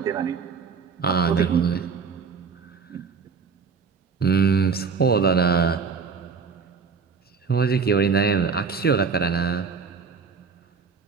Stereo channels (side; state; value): left; quieter; 5.4 dB